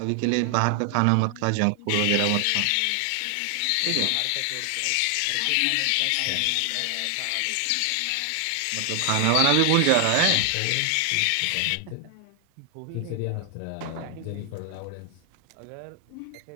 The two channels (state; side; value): different; both; correlation 0.00